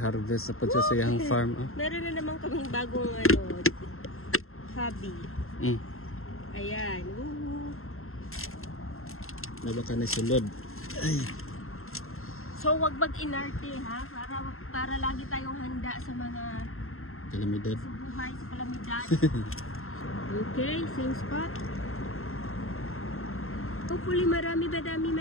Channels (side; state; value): right; late; 0.61 ms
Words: sa pagsasayang farm. Oh. Meron na naman kaming bagong hobby. Ayan. Nabaka na sulod. Ay. So, wag mag-inarte, ha? Para lagi tayong handa sa mga kalamidad. Sa buhay, sa kalamidad. Okay, same spot. Hopefully madami.